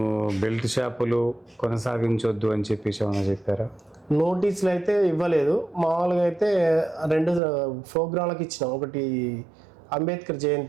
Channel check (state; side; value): drops out; left; at 7.4 s